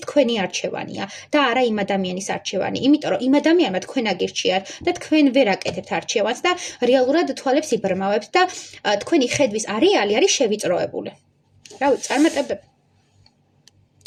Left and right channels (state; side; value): identical; both; correlation 1.00